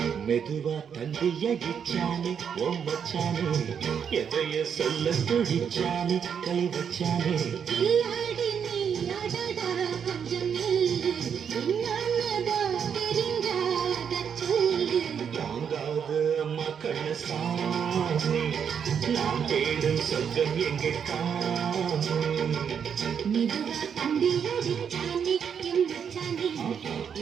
மெதுவா தந்தி அடிச்சானே ஓ மச்சானே எதைய சொல்ல துடிச்சானே கை வச்சானே கில்லாடி நீ அடடா கொஞ்சம் நில்லு என்னன்னதா தெரிஞ்சாத சொல்லு தாங்காது அம்மா கண்ண சாமி நான் தேடும் சொர்க்கம் எங்கே காமி மெதுவா தந்தி அடிச்சானே எம் மச்சானே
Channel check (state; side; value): quieter; left; 7.5 dB